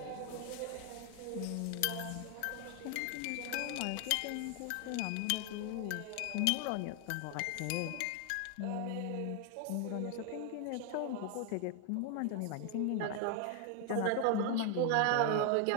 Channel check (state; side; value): different; both; correlation 0.00